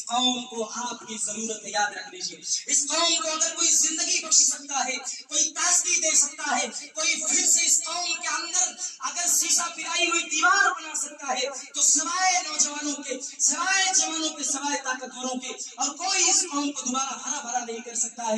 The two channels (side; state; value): both; identical; correlation 1.00